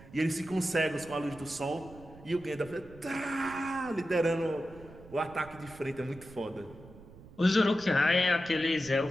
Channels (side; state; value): right; noise; rumble, 19 dB below the sound